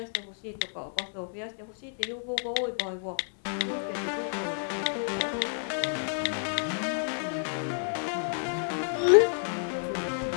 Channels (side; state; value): right; silent; 58 dB below the other